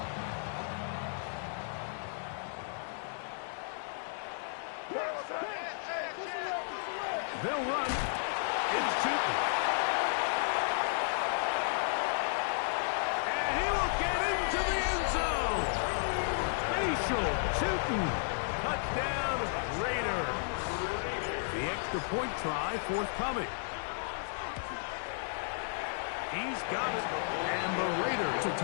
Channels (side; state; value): right; silent; digital silence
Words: They'll run. It's Tootin. And he will get into the end zone. Facial Tootin. Touchdown, Raiders. The extra point try forthcoming. He's got it. And the Raiders to